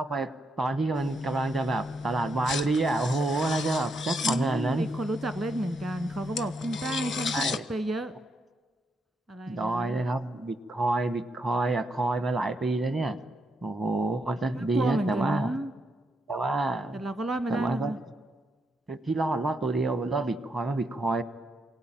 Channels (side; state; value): both; normal; correlation 0.79